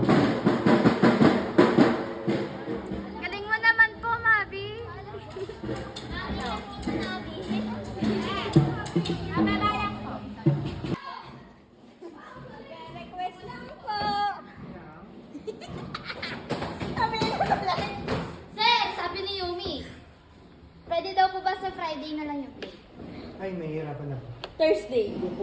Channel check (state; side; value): identical; both; correlation 1.00